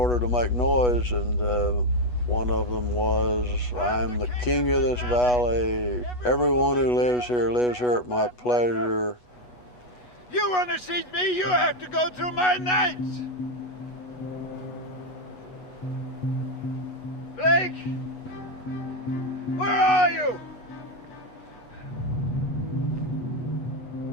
to make noise, and one of them was, "I'm the king of this valley. Everyone who lives here at my pleasure." You want to see me, you have to go through my nights. Blake, where are you?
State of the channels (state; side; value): late; right; 8.2 ms